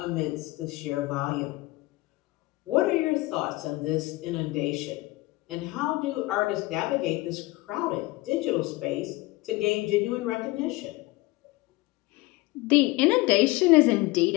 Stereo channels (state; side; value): quieter; right; 20.9 dB